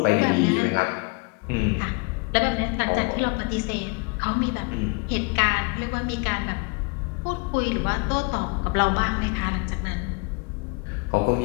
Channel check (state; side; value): quieter; right; 32.2 dB